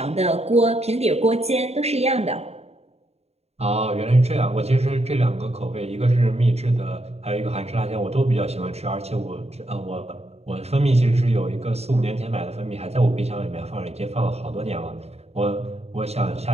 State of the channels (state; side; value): late; left; 0.30 ms